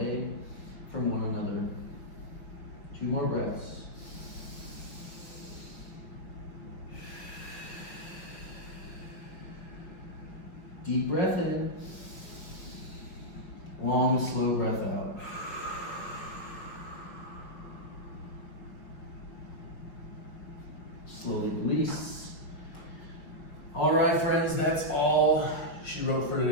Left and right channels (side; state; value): right; late; 5.5 ms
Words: from one another. 2 more breaths. Deep breath in. Long, slow breath out. Slowly release. All right, friends, that's all she wrote for